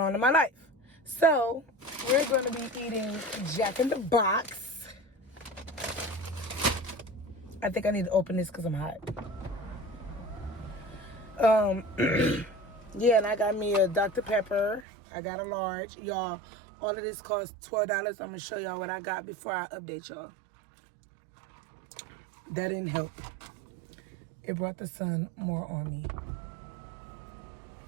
on in my life. So we're going to be eating Jack in the Box. I think I need to open this because I'm hot. Yeah, and I got me a Dr. Pepper. I got a large. Y'all, all of this costs $12. I'm going to show y'all what I got before I update y'all. That didn't help. It brought the sun more on me.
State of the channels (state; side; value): drops out; left; at 14.9 s